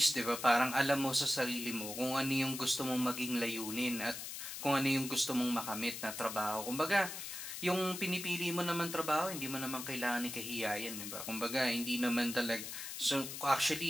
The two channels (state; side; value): noise; left; hiss, 7 dB below the sound